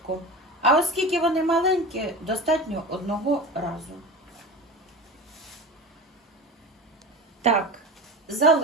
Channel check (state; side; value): normal; both; correlation 0.30